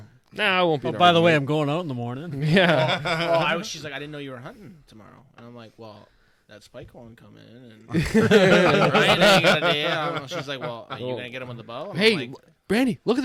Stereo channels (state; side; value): identical; both; correlation 1.00